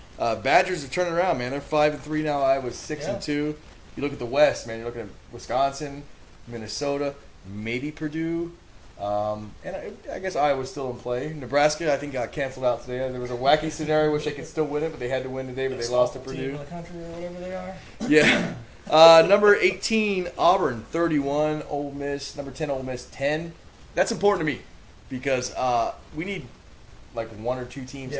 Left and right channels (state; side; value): identical; both; correlation 1.00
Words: Badgers are turning around, man. They're 5-3 now. Iowa's 6-2. You look at the West, man. You're looking at Wisconsin, Minnesota, maybe Purdue. And I guess Iowa's still in play. Nebraska, I think, got canceled out today. There was a wacky scenario which they could still win it, but they had to win today, but they lost to Purdue. Team in the country or whatever they are. Yeah. Number 18, Auburn, 31. Ole Miss, number 10, Ole Miss, 10. That's important to me because we need like 1 or 2 teams